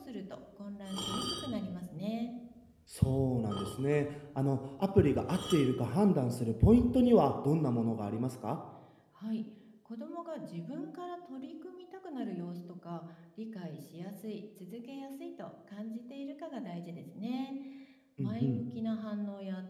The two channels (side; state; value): both; identical; correlation 1.00